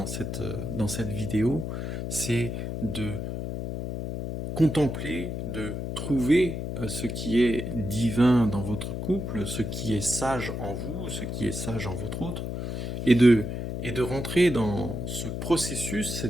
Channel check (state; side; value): noise; left; hum, 4 dB below the sound